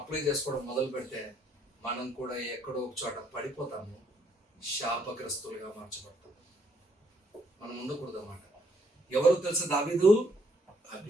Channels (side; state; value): both; normal; correlation 0.69